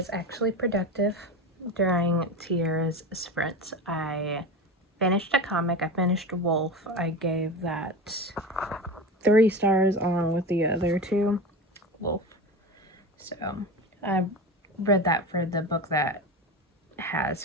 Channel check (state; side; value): normal; both; correlation 0.26